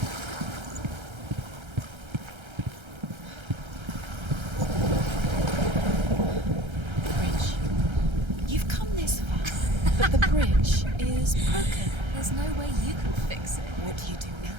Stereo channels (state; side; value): late; left; 1.3 ms